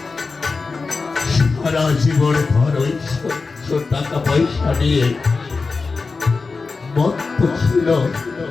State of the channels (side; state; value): right; quieter; 4.2 dB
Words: সারা জীবন ঘর ওই টাকা পয়সা নিয়ে মত্ত ছিল